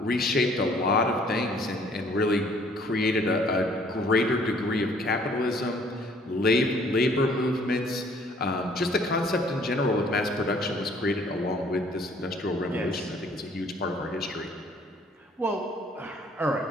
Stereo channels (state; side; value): normal; both; correlation 0.59